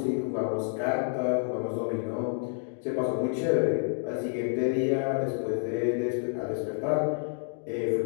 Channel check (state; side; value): silent; right; 59 dB below the other